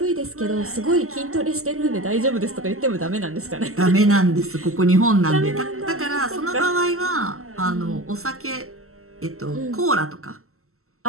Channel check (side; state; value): left; late; 0.63 ms